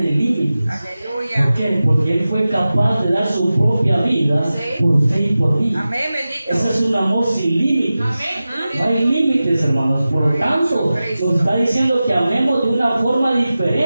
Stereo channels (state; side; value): inverted; both; correlation -0.95